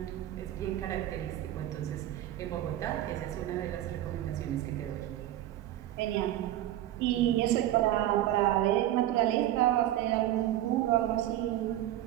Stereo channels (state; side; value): quieter; left; 13.3 dB